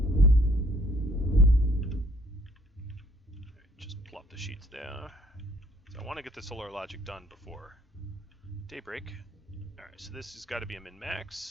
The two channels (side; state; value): both; normal; correlation 0.60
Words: Alright, just plop the sheets there. So I want to get the solar logic done before daybreak. Alright, so this has got to be a